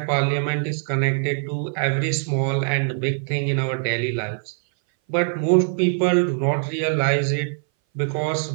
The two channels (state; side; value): silent; left; 59 dB below the other